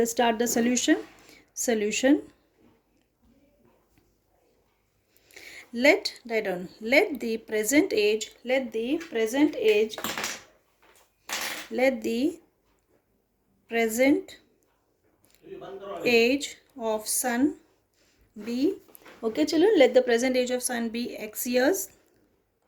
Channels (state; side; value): identical; both; correlation 1.00